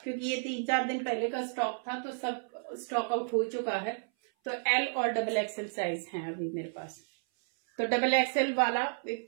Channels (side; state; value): left; silent; 56 dB below the other